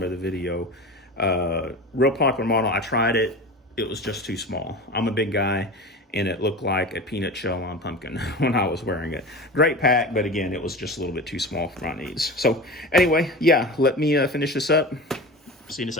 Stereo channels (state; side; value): normal; both; correlation 0.31